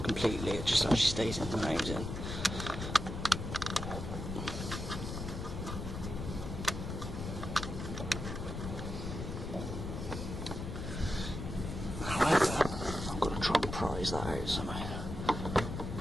completely, it just actually stays in the housing. However, I've got to try and prise that out somehow.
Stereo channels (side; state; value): left; noise; rumble, 5 dB below the sound